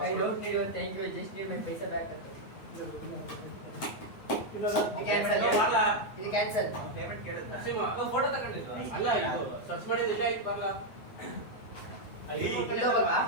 I don't need your thank you just need my paisa back ಅಂತ ಇದು ಕ್ಯಾನ್ಸಲ್ ಪೇಮೆಂಟ್ ಕೇಳಿದ್ದ ಫೋಟೋ ತಗೊಂಡಿದ್ವಾ ಅಲ್ಲ ಇದು ಸರ್ಚ್ ಮಾಡಿದ್ರೆ ಇಲ್ಲ ಆಯ್ತು ಬರಲ್ಲ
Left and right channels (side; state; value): right; late; 9.0 ms